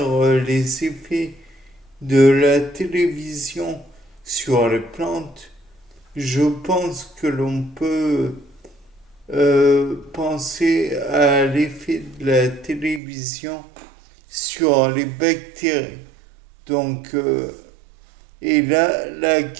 les effets de la télévision sur les plantes, je pense que l'on peut penser à l'effet de la télévision sur les bactéries. Donc, et là, la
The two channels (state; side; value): drops out; left; at 13.0 s